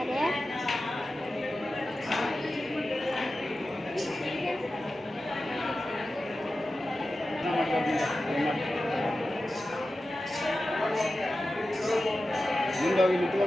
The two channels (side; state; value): both; normal; correlation 0.93